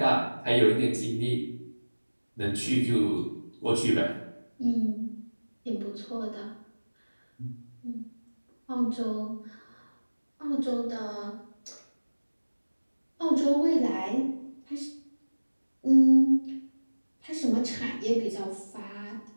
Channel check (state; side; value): inverted; both; correlation -1.00